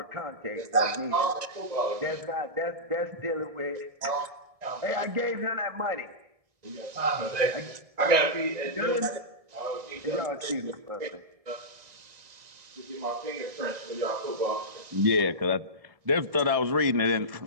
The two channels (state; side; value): late; left; 1.7 ms